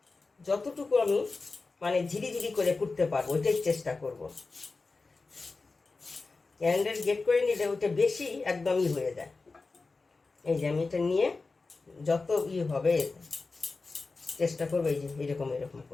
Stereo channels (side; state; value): right; quieter; 3.9 dB